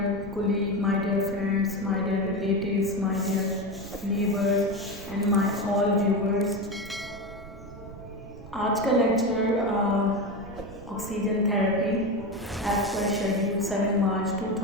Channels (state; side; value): noise; right; rumble, 16 dB below the sound